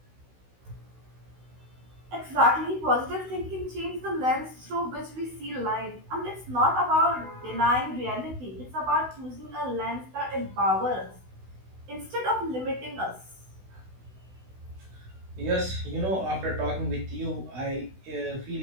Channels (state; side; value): late; left; 16 ms